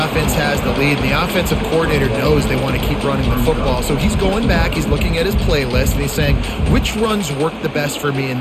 offense has the lead, and the offensive coordinator knows they want to keep running the football. So he's going back, he's looking at his playlist, and he's saying, which runs work the best for me in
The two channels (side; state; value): both; identical; correlation 1.00